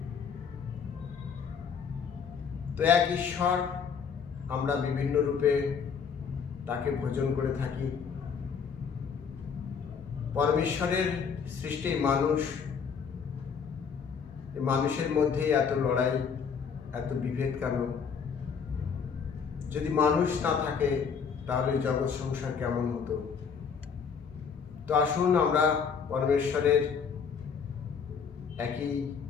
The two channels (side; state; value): right; quieter; 6.4 dB